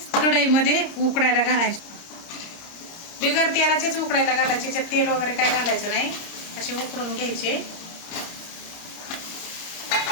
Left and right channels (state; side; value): late; right; 30 ms